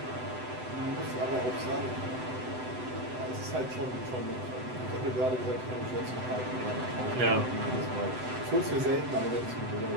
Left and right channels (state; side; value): late; left; 7.9 ms